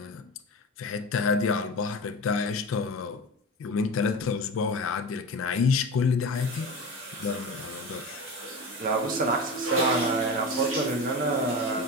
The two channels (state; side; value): normal; both; correlation 0.27